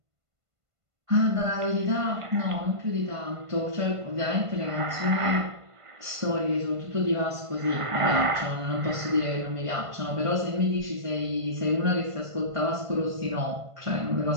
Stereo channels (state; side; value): late; left; 1.5 ms